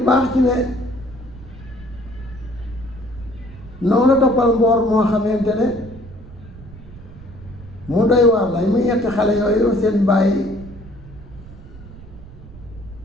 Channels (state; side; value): noise; right; rumble, 17 dB below the sound